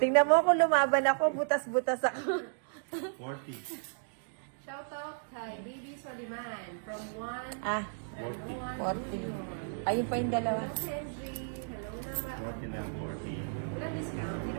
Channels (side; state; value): left; silent; digital silence